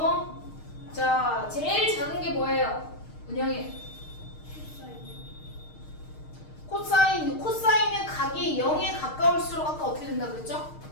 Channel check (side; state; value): right; late; 6.5 ms